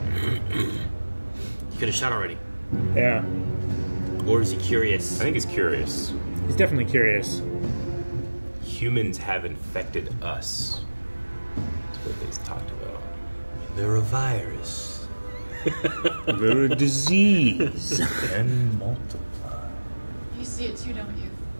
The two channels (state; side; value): inverted; both; correlation -1.00